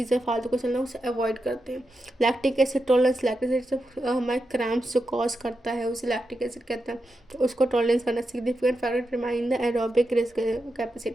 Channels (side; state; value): both; normal; correlation 0.87